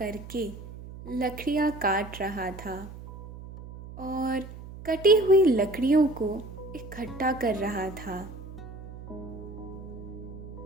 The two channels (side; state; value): right; noise; hum, 13 dB below the sound